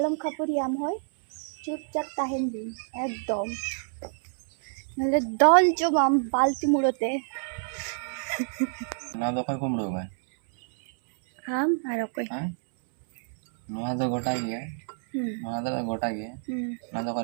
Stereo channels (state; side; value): silent; left; 60 dB below the other